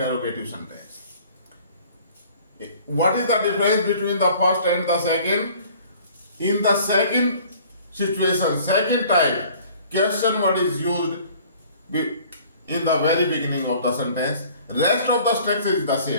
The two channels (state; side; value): inverted; both; correlation -0.52